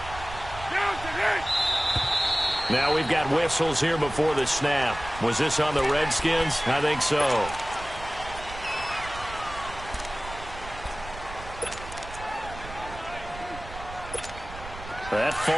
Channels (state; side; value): noise; right; rumble, 13 dB below the sound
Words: Now we've got whistles here before the snap. Was this on the Redskins? I think so. That